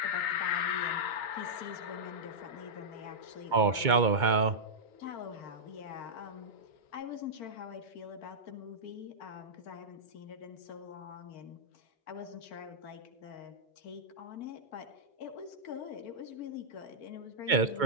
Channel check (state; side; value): late; left; 2.2 ms